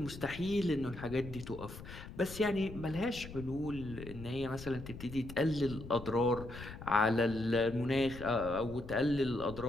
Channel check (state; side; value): noise; left; rumble, 12 dB below the sound